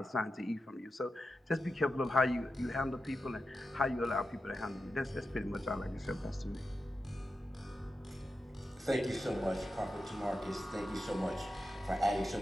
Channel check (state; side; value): normal; both; correlation 0.90